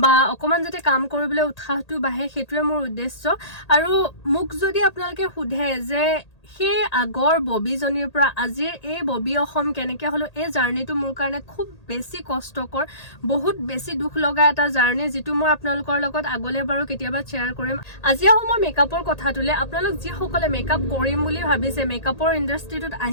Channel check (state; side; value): late; right; 1.8 ms